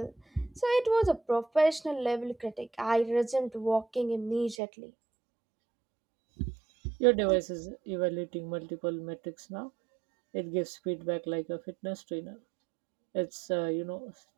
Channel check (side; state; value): left; drops out; at 4.5 s